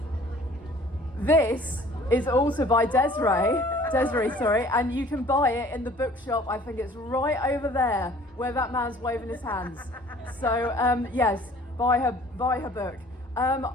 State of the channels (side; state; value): both; normal; correlation 0.52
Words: This is also by Desree, and you can buy it in the bookshop. I think it's right over there where that man's waving his hands. So yes, buy her book.